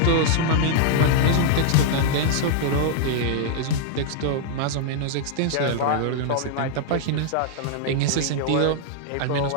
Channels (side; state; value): both; different; correlation -0.01